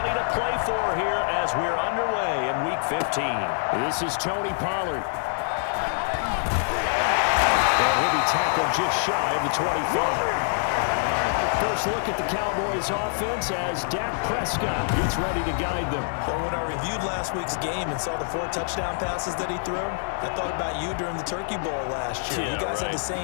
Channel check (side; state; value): right; silent; 61 dB below the other